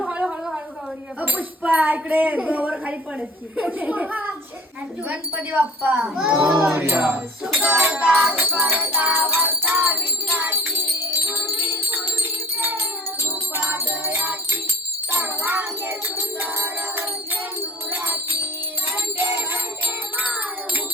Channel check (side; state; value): both; normal; correlation 0.46